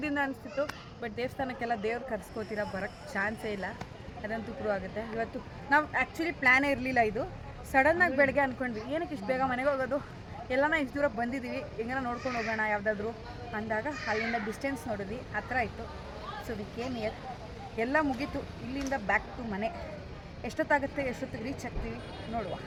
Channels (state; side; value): identical; both; correlation 1.00